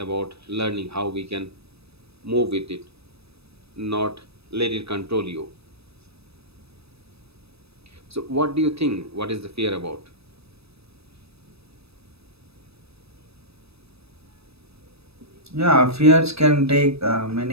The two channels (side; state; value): left; late; 0.78 ms